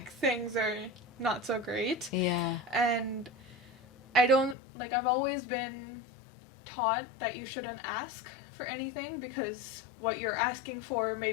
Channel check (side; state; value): right; drops out; at 4.5 s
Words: things are not so great. Yeah. And I don't like, I've always been taught that you shouldn't ask for anything because what you're asking for may